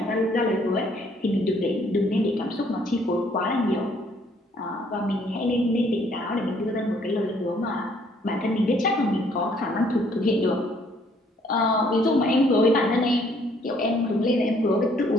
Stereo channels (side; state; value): both; normal; correlation 0.64